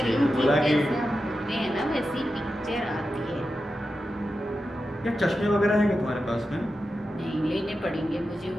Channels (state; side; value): normal; both; correlation 0.90